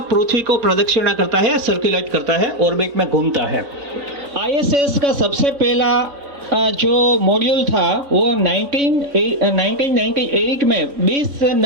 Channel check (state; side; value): late; left; 3.9 ms